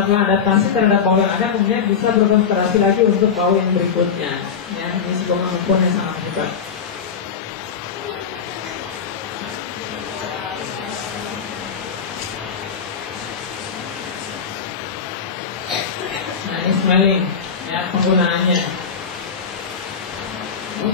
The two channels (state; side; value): quieter; right; 6.6 dB